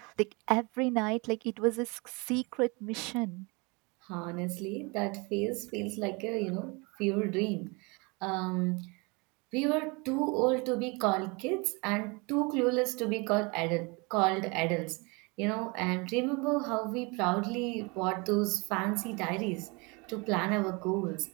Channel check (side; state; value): left; quieter; 28.7 dB